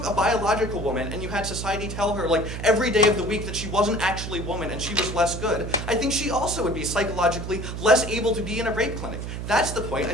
a biological woman and you had society tell her like every day of the week that she wasn't actually a woman and she was less good, I think she also would be psychologically less able to be in a rape clinic. That's the point.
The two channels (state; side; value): noise; right; hum, 6 dB below the sound